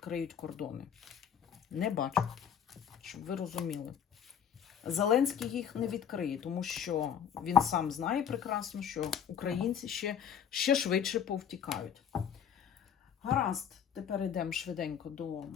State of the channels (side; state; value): right; quieter; 8.5 dB